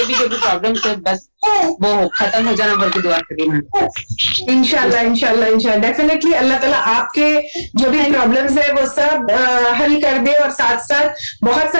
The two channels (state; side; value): inverted; both; correlation -1.00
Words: भी जो भी प्रॉब्लम्स है, बस वो खत्म हो जाना बोल के दुआ करिए मैम। इंशाल्लाह इंशाल्लाह इंशाल्लाह डेफिनेटली अल्लाह ताला आपके जो भी प्रॉब्लम्स है वो सब हल कर दे, और साथ साथ बहुत